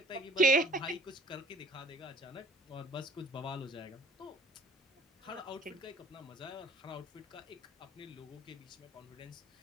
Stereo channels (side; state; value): both; normal; correlation 0.53